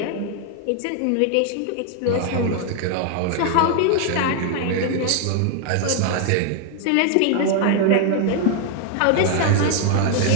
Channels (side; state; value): both; different; correlation 0.00